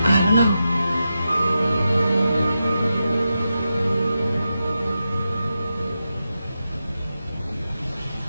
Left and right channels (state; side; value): inverted; both; correlation -0.89